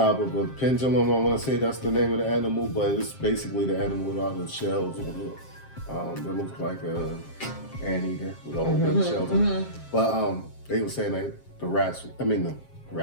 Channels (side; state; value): right; late; 7.5 ms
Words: of a pendulum. I want to say that's the name of the animal, but it's basically the animal with all the shells on it. It looks like a anteater with all the shells on it. But they were saying that